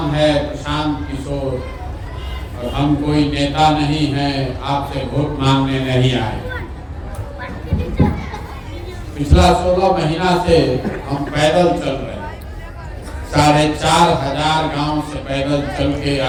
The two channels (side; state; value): both; identical; correlation 1.00